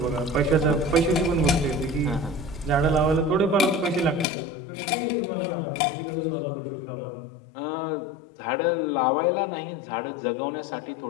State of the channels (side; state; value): right; drops out; at 4.2 s